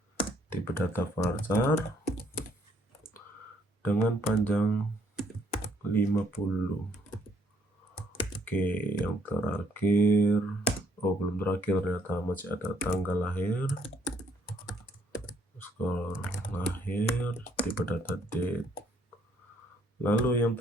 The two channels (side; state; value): both; normal; correlation 0.67